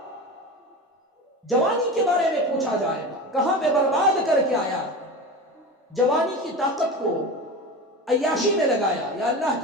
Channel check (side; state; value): both; normal; correlation 0.29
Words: جوانی کے بارے میں پوچھا جائے گا کہاں پہ برباد کر کے آیا ہے. جوانی کی طاقت کو عیاشی میں لگایا یا اللہ